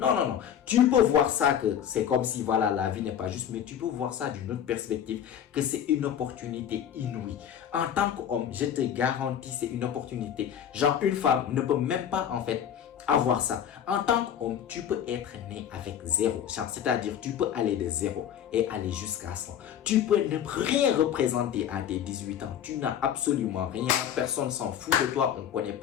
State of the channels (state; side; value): quieter; right; 9.4 dB